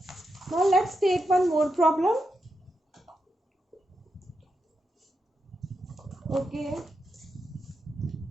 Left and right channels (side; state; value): both; normal; correlation 0.86